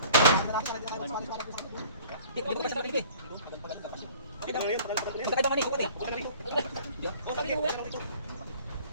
Di ko pa siya nabili. Ang takay bang ani, kupat eh.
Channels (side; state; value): both; inverted; correlation -0.51